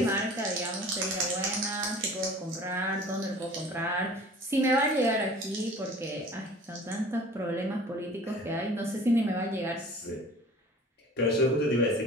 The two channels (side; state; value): both; normal; correlation 0.45